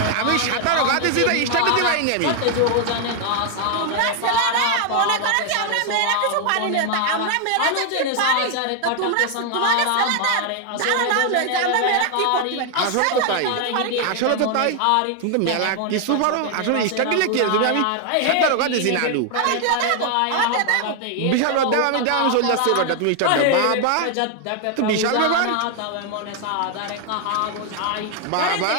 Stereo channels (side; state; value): both; different; correlation 0.00